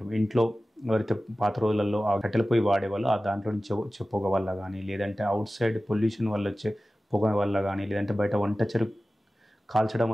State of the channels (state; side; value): normal; both; correlation 0.96